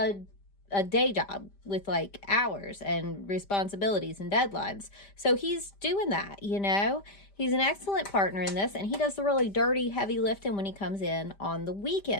day job with like hours and responsibilities and deadlines. So he's doing that, you know. He's an excellent partner in this, and he does the really dirty, heavy lifting when he comes in on the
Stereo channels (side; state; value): right; late; 5.0 ms